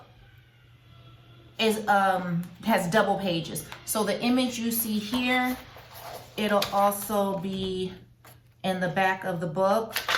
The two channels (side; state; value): both; identical; correlation 1.00